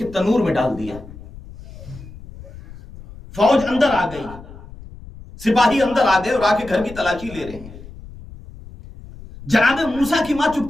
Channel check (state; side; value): noise; left; rumble, 17 dB below the sound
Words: تنور میں ڈال دیا. فوج اندر آ گئی, سپاہی اندر آ گئے اور آ کے گھر کی تلاشی لے رہے ہیں. جناب موسیٰ کی ماں